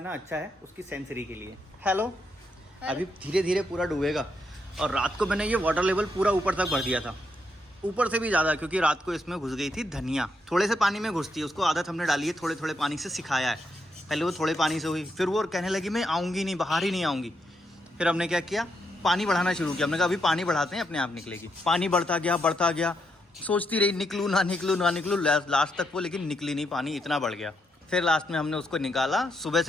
अच्छा है, उसकी सेंसरी के लिए। हेलो, अभी धीरे धीरे पूरा डूबेगा और रात को मैंने ये वाटर लेवल पूरा ऊपर तक भर दिया था, ऊपर से भी ज़्यादा, क्योंकि रात को इसमें घुस गई थी धनिया। थोड़े से पानी में घुसती है, उसको आदत हमने डाली है, थोड़े थोड़े पानी से सिखाया है। पहले वो थोड़े पानी से हुई, फिर वो कहने लगी मैं आऊँगी नहीं, बाहर ही नहीं आऊँगी। फिर हमने क्या किया, पानी बढ़ाना शुरू किया। हमने कहा अभी पानी बढ़ाते हैं, अपने आप निकलेगी। पानी बढ़ता गया, सोचती रही निकलूँ ना निकलूँ लास्ट तक वो, लेकिन निकली नहीं, पानी इतना बढ़ गया। फिर लास्ट में हमने उसको निकाला। सुबह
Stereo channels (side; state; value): both; normal; correlation 0.79